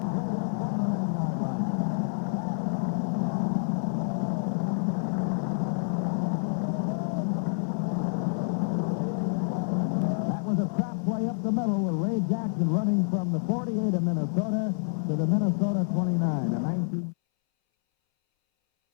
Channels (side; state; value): right; silent; 59 dB below the other